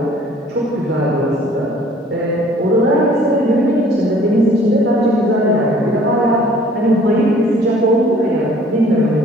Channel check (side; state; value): both; normal; correlation 0.55